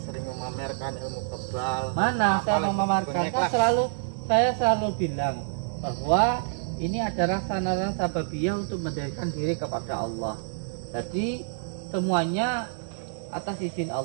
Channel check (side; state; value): left; silent; digital silence